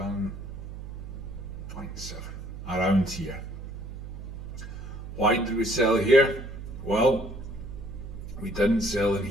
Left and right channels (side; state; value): right; noise; hum, 10 dB below the sound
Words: around here. Why did we sell here? Well, we didn't sell in